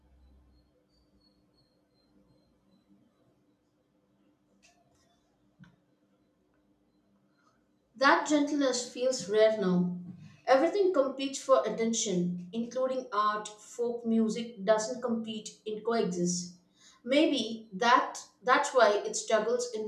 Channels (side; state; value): both; identical; correlation 1.00